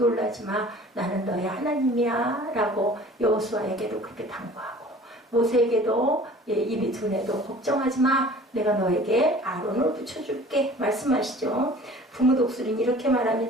마. 나는 너의 하나님이야. 라고 여호수아에게도 그렇게 당부하고 모세에게도 입이 둔해도 걱정하지 마. 내가 너에게 아론을 붙여줄게. 말씀하시죠. 부모 독수리는 이렇게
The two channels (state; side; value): normal; both; correlation 0.47